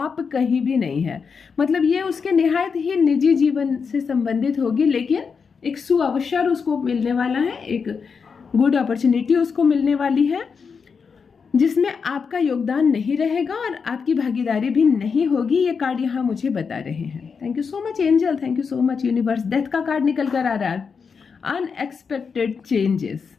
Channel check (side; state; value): right; quieter; 5.7 dB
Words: कहीं भी नहीं है। मतलब ये उसके निहायत ही निजी जीवन से संबंधित होगी, लेकिन एक सुअवसर उसको मिलने वाला है, एक गुड अपॉर्चुनिटी उसको मिलने वाली है जिसमें आपका योगदान नहीं रहेगा और आपकी भागीदारी भी नहीं होगी। ये कार्ड यहाँ मुझे बता रहे हैं। Thank you so much angel, thank you so much universe. Death का कार्ड निकल कर आ रहा है। Unexpected changes,